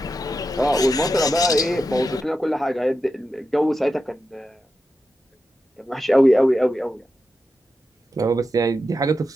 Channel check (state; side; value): normal; both; correlation 0.89